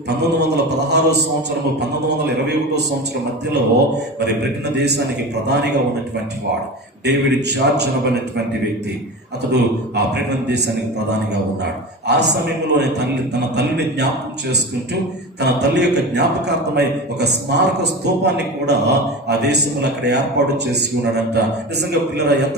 1916 సంవత్సరము 1921 సంవత్సరం మధ్యలో మరి బ్రిటన్ దేశానికి ప్రధానిగా ఉన్నటువంటి వాడు డేవిడ్ చార్చ్ అనబడినటువంటి వ్యక్తి. అతడు ఆ బ్రిటన్ దేశానికి ప్రధానిగా ఉన్నాడు. ఆ సమయంలోనే తన తల్లిని జ్ఞాపకం చేసుకుంటూ తన తల్లి యొక్క జ్ఞాపకార్థమై ఒక స్మారక స్తూపాన్ని కూడా ఆ దేశంలో అక్కడ ఏర్పాటు చేసి ఉన్నాడంట. నిజంగా పిల్లల ఎంత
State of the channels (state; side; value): normal; both; correlation 0.29